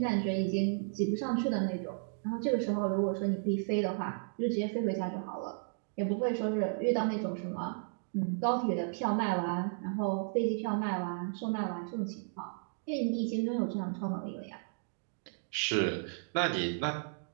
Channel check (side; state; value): left; silent; digital silence